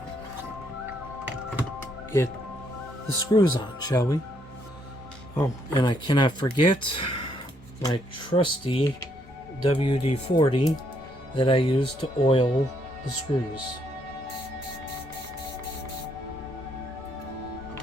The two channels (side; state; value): both; normal; correlation 0.72